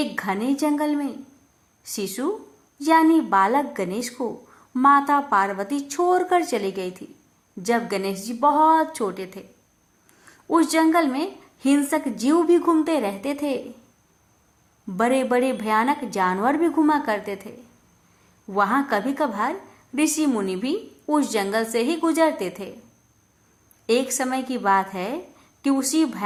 घने जंगल में शिशु यानी बालक गणेश को माता पार्वती छोड़कर चली गई थी जब गणेश जी बहुत छोटे थे। उस जंगल में हिंसक जीव भी घूमते रहते थे। बड़े बड़े भयानक जानवर भी घुमा करते थे। वहां कभी कभार ऋषि मुनि भी उस जंगल से ही गुजरते थे। एक समय की बात है कि उसी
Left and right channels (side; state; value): both; identical; correlation 1.00